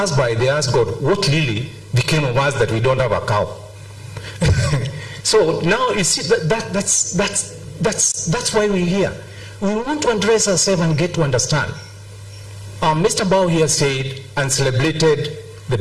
by, they ask God, what really became of us that we don't have a cow? So now you see that's why we're here. we want to address ourselves and get to understand. Mr. Bao here said and celebrated the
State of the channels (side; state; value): both; identical; correlation 1.00